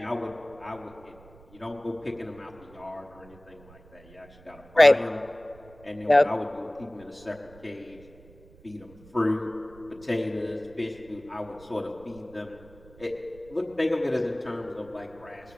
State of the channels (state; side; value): noise; right; rumble, 23 dB below the sound